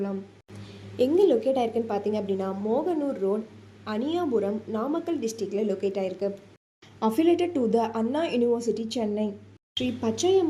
எங்கே லொக்கேட் ஆயிருக்குன்னு பார்த்தீங்க அப்படின்னா, மோகனூர் ரோட், அனியாபுரம், நாமக்கல் டிஸ்ட்ரிக்டில் லொக்கேட் ஆயிருக்கு. Affiliated to the Anna university, Chennai. Shri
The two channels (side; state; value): both; identical; correlation 1.00